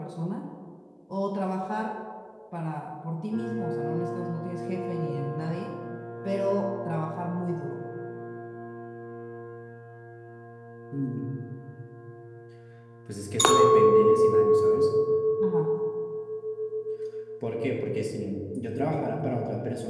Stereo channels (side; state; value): both; identical; correlation 1.00